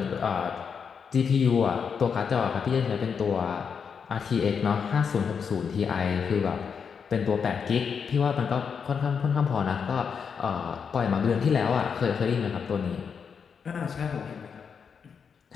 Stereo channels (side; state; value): right; quieter; 6.4 dB